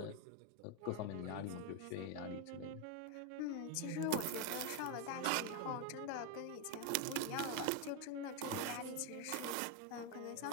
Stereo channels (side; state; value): both; different; correlation 0.01